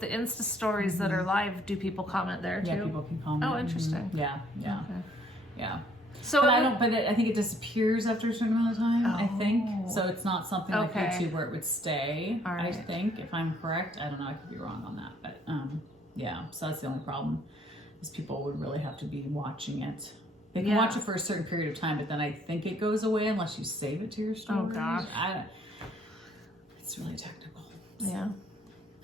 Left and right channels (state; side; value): normal; both; correlation 0.64